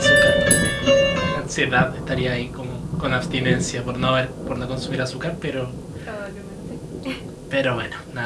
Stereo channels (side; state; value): both; identical; correlation 1.00